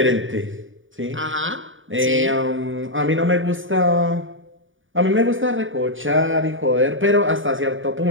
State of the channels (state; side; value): late; left; 0.57 ms